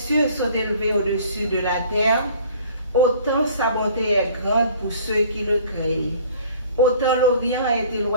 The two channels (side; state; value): both; inverted; correlation -0.51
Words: sont élevés au-dessus de la terre, autant sa bonté est grande pour ceux qui le craignent. Autant l'Orient est